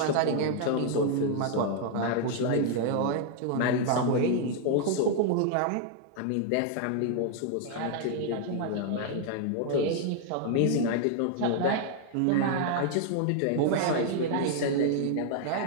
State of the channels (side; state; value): both; different; correlation 0.00